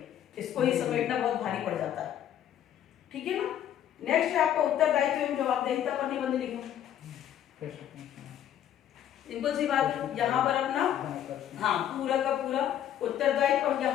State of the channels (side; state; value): right; quieter; 10.7 dB